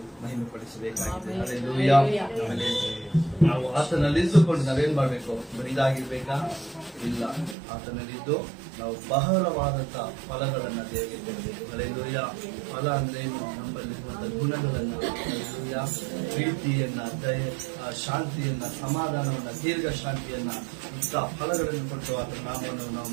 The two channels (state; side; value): drops out; left; at 7.6 s